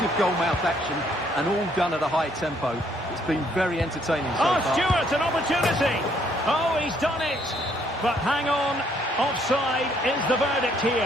of goal-mouth action, and all done at a high tempo. It's been very entertaining so far. Stewart, an opportunity! Oh, he's done it! But hang on, offside is the verdict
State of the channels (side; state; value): both; normal; correlation 0.67